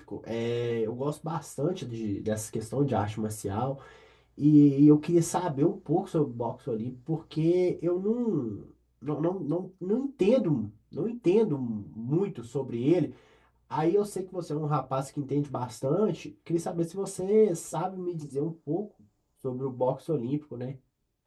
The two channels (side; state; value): both; identical; correlation 1.00